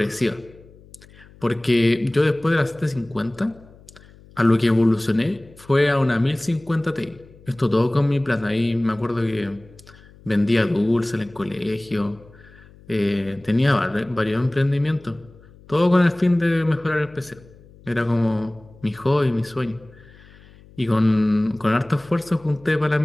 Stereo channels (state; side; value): noise; left; hum, 24 dB below the sound